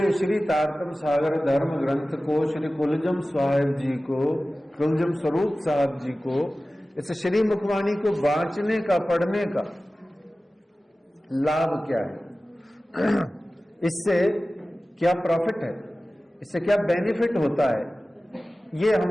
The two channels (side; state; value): both; normal; correlation 0.96